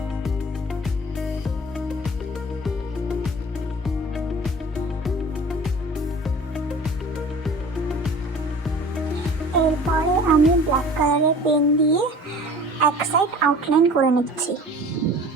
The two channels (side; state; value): both; normal; correlation 0.44